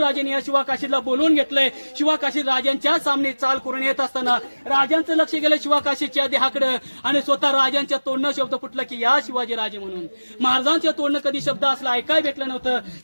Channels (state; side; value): inverted; both; correlation -1.00